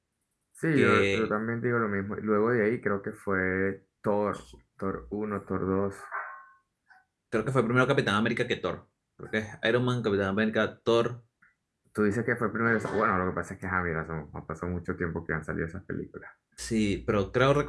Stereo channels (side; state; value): both; identical; correlation 1.00